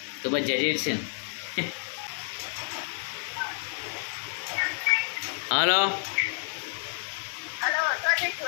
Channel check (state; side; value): silent; right; 58 dB below the other